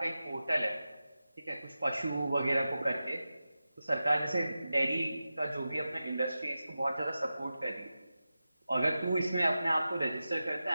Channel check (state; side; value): inverted; both; correlation -0.93